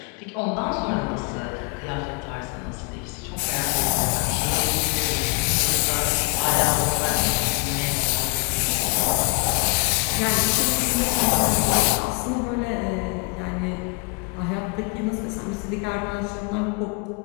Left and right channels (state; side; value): quieter; right; 34.7 dB